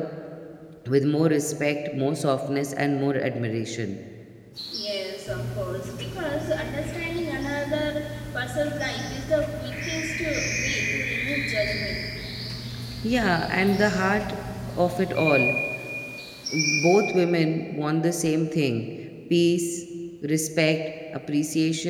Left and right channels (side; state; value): both; identical; correlation 1.00